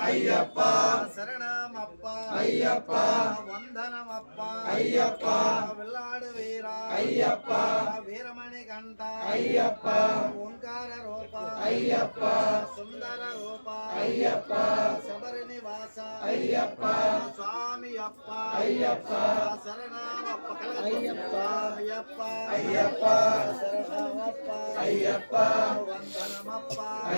అయ్యప్ప శరణమప్ప అయ్యప్ప వందనమప్ప అయ్యప్ప వెల్లాడు వీర అయ్యప్ప వీరమణి కంఠ అయ్యప్ప ఓంకార రూప అయ్యప్ప సుందర రూప అయ్యప్ప శబరి నివాస అయ్యప్ప స్వామియప్ప అయ్యప్ప శరణమప్ప అయ్యప్ప అయ్యప్ప అయ్యప్ప శరణమప్ప అయ్యప్ప వందనమప్ప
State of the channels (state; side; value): inverted; both; correlation -1.00